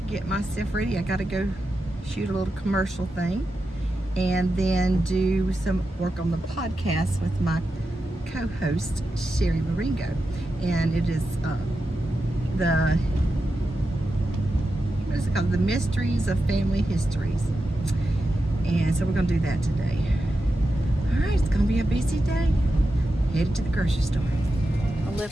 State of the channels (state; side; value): normal; both; correlation 0.90